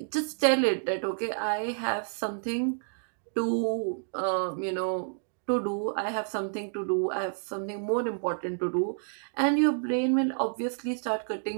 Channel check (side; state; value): left; silent; digital silence